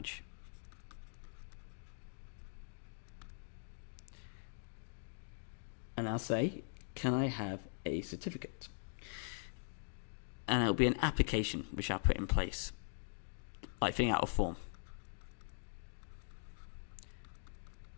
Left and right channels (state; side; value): silent; right; digital silence